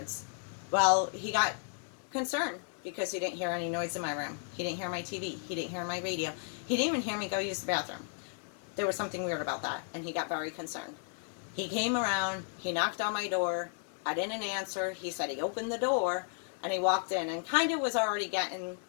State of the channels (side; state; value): right; silent; 55 dB below the other